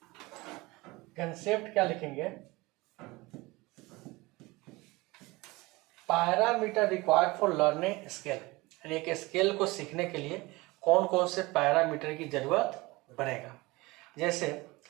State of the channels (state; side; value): quieter; left; 22.3 dB